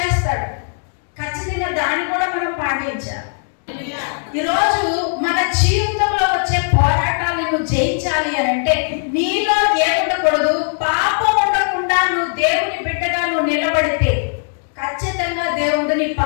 ఖచ్చితంగా దాన్ని కూడా మనం పాటించాలి. ఈరోజు మన జీవితంలో వచ్చే పోరాటాలను నువ్వు జయించాలి అని అంటే నీలో ఏముండకూడదు, పాపం ఉండకుండా నువ్వు దేవుని బిడ్డగా నువ్వు నిలబడితే ఖచ్చితంగా దేవుడు నీ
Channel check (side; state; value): right; silent; digital silence